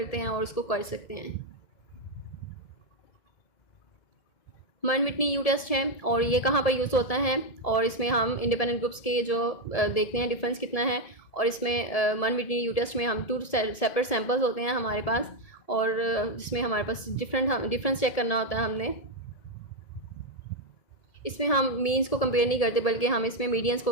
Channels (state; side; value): late; right; 1.7 ms